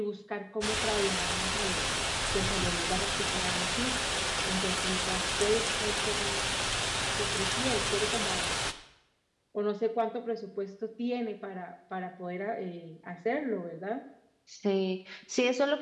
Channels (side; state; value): both; identical; correlation 1.00